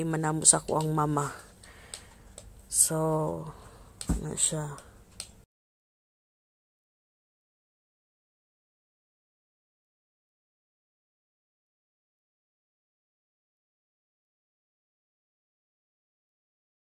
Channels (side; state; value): both; identical; correlation 1.00